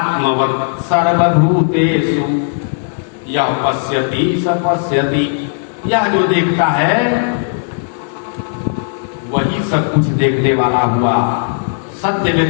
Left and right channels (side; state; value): right; silent; digital silence